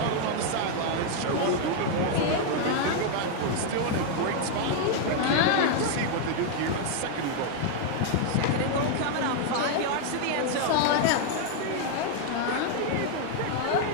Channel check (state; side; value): different; both; correlation 0.00